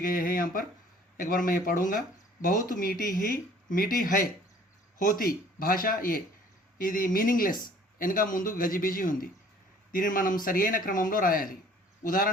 हैं यहाँ पर एक बार मैं ये पढ़ूंगा बहुत मीठी है होती భాష ఇది మీనింగ్లెస్ వెనక ముందు గజిబిజి ఉంది దీనిని మనం సరియైన క్రమంలో రాయాలి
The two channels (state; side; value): normal; both; correlation 0.54